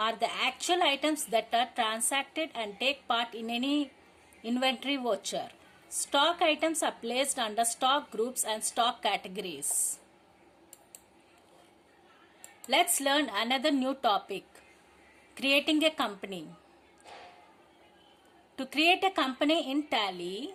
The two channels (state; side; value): identical; both; correlation 1.00